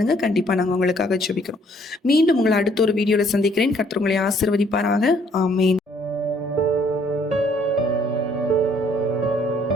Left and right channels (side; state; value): both; normal; correlation 0.64